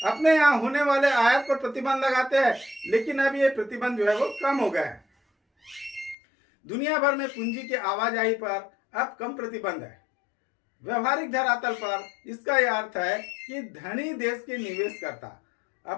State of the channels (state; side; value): drops out; right; at 6.2 s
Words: अपने यहाँ होने वाले आयात पर प्रतिबंध लगाते हैं, लेकिन अब ये प्रतिबंध जो है वो कम हो गया है। दुनिया भर में पूंजी की आवाजाही पर अब कम प्रतिबंध है। व्यवहारिक धरातल पर इसका यह अर्थ है कि धनी देश के निवेशकर्ता